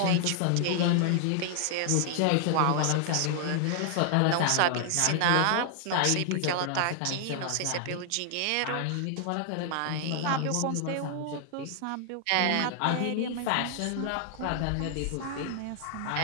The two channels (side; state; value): both; different; correlation 0.00